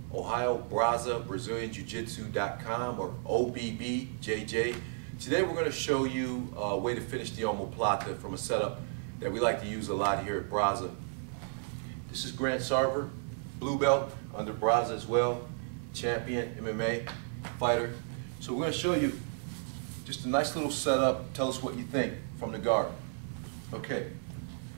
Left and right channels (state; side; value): silent; left; 56 dB below the other